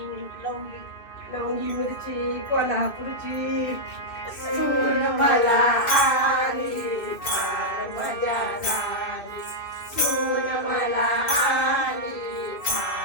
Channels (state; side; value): late; right; 2.6 ms